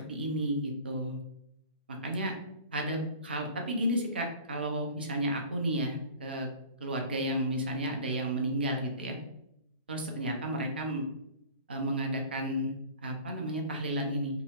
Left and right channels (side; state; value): both; inverted; correlation -0.43